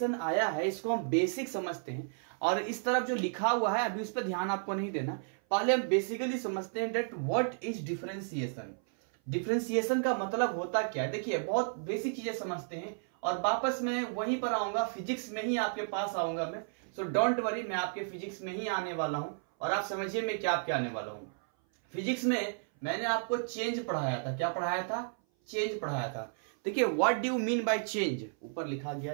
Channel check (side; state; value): left; silent; 56 dB below the other